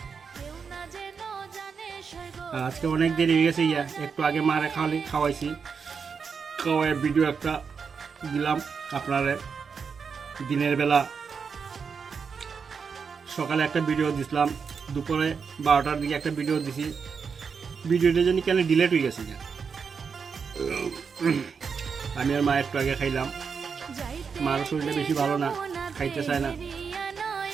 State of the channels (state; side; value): quieter; left; 5.9 dB